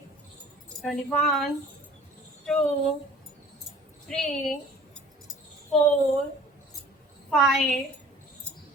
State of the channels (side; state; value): both; normal; correlation 0.48